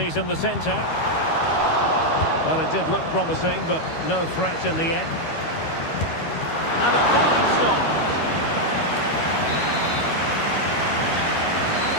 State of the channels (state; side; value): late; right; 13 ms